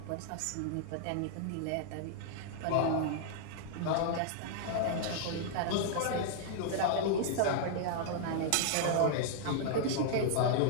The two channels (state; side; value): different; both; correlation -0.01